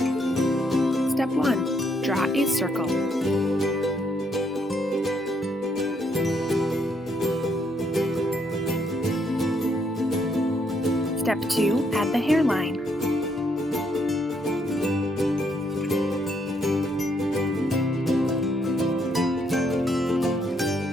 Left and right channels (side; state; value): both; normal; correlation 0.73